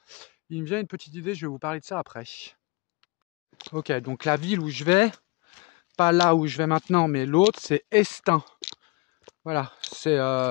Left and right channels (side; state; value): right; quieter; 27.2 dB